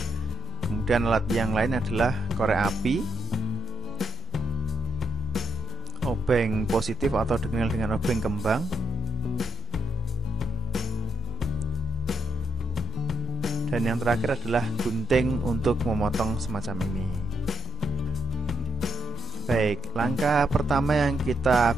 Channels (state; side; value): normal; both; correlation 0.80